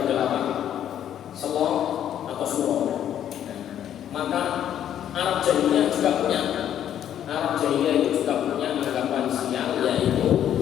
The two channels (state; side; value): quieter; right; 10.4 dB